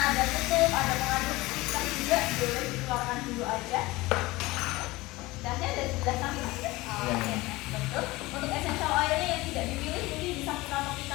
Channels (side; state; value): right; quieter; 20.5 dB